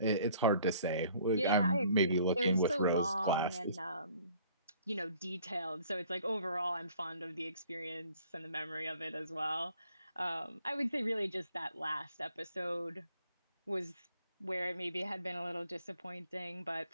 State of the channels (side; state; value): both; inverted; correlation -0.57